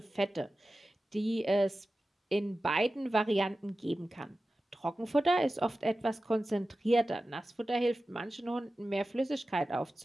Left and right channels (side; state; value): both; normal; correlation 0.94